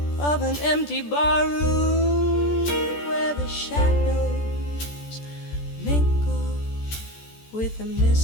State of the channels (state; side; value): late; right; 14 ms